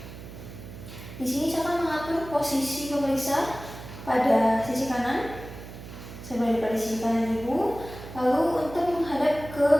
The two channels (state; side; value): noise; right; hum, 13 dB below the sound